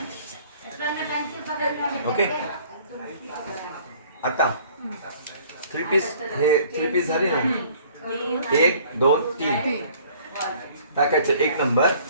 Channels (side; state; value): both; inverted; correlation -0.54